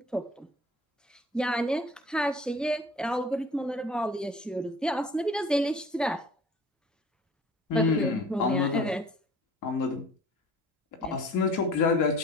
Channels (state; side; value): normal; both; correlation 0.46